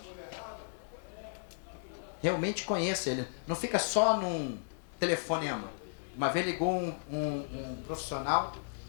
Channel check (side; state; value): right; silent; digital silence